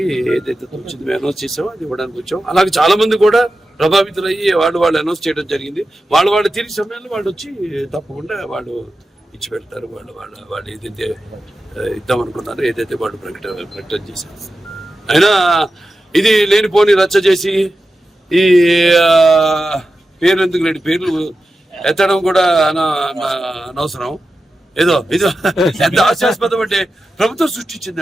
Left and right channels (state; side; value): normal; both; correlation 0.92